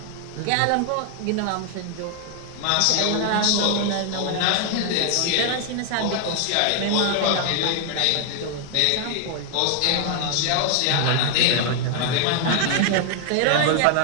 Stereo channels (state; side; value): different; both; correlation 0.00